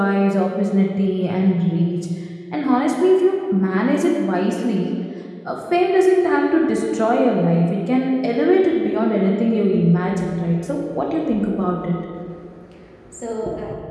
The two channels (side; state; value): both; identical; correlation 1.00